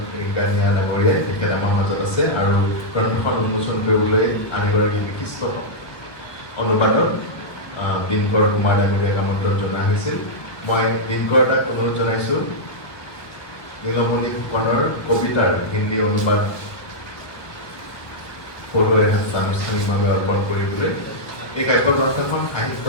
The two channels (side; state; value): right; late; 1.4 ms